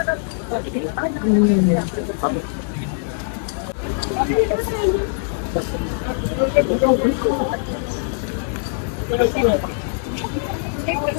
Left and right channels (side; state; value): right; silent; 65 dB below the other